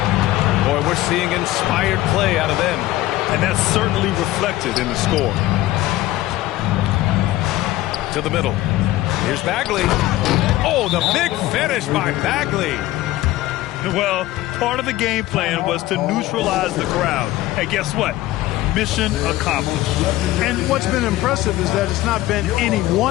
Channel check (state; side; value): quieter; right; 16.2 dB